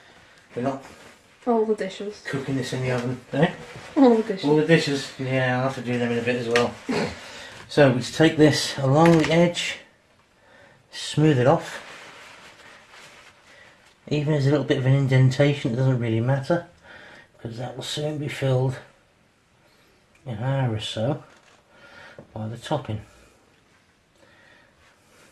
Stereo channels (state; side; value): identical; both; correlation 1.00